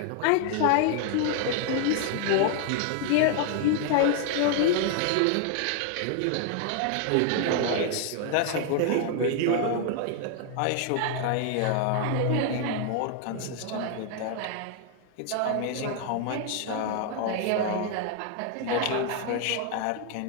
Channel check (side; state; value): both; different; correlation 0.00